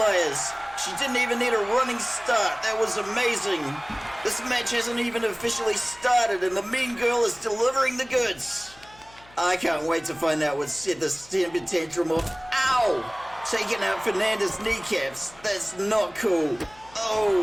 She didn't even need a running start. That was amazing. This match hasn't even officially started, and the mean girl is delivering the goods. I can't wait to find out what set this temper tantrum off. Ow! Taking out Fernanda's kneecaps. That's not cool.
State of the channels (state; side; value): noise; left; hum, 25 dB below the sound